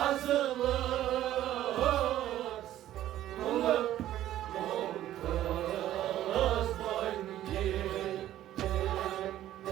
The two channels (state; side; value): quieter; left; 13.1 dB